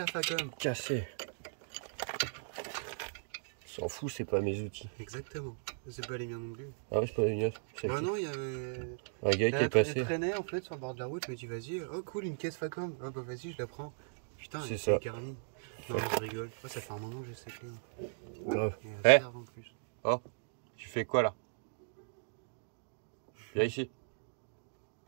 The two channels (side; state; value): left; silent; digital silence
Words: Facom. cassé. S'en fout, c'est pas mes outils. Exactement. C'est pas les miens non plus. Ah ouais, c'est pas les miens. Bah non, il y avait... Un gars qui est passé. Elle traînait en fait sur le bord de la route, je me dis vas-y, oh cool, une caisse Facom. Oh bah vas-y, je la prends. Putain, C'est elle ça. est garnie. Non, je rigole. Oh, ça fait un moment que je sais que... Grave. Et Eh. elle serve en plus. Oh, tu fais quoi là? Viens ici.